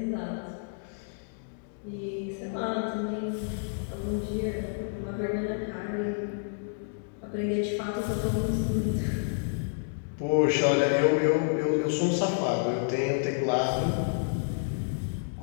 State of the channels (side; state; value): right; silent; digital silence